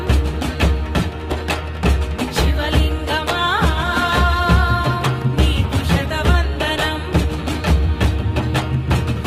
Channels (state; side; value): identical; both; correlation 1.00